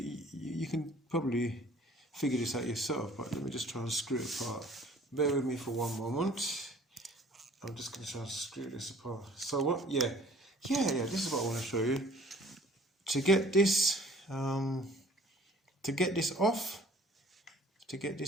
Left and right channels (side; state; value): both; normal; correlation 0.53